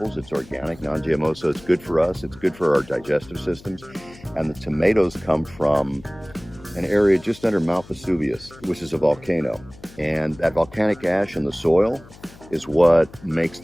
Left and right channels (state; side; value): noise; left; hum, 21 dB below the sound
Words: It's organic, non-GMO, so it's good for us. It's good for our digestive systems. And the tomatoes come from an area just under Mount Vesuvius, which is a volcano. And that volcanic ash in the soil is what makes